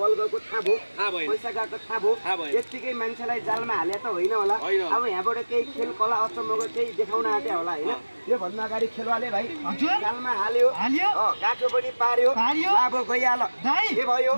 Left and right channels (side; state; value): both; inverted; correlation -1.00